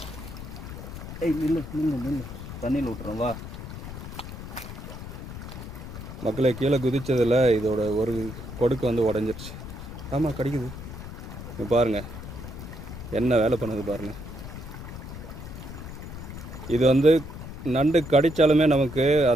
ஏய் நில்லு நில்லு நில்லு, தண்ணியில் விட்டுறோம் வா. மக்களை கீழே குதிச்சதில் இதோட ஒரு கொடுக்கு வந்து உடஞ்சிருச்சு. ஆமாம், கடிக்குது. பாருங்கள் என்ன வேலை பண்ணுது பாருங்கள். இது வந்து நண்டு கடித்தாலுமே நமக்கு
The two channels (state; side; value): noise; left; rumble, 10 dB below the sound